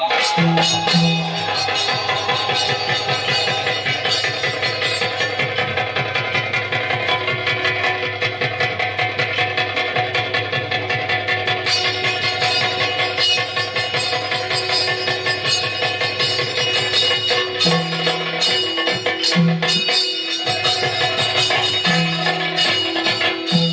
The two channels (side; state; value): both; identical; correlation 1.00